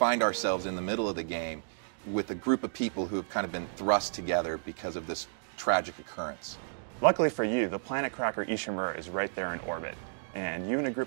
ourselves in the middle of the game with a group of people who have kind of been thrust together because of this tragic occurrence. Luckily for you, the planet cracker Ishimura is right there in orbit, and you and a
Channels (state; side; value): silent; left; digital silence